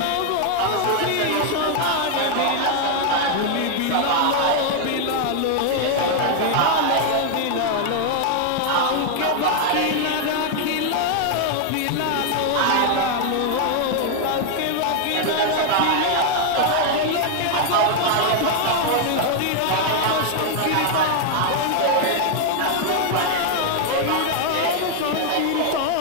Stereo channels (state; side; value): different; both; correlation 0.00